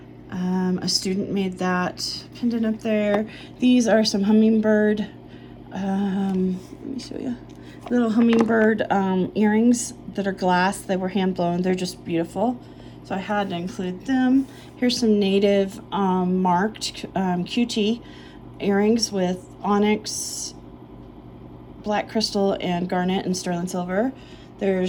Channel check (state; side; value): identical; both; correlation 1.00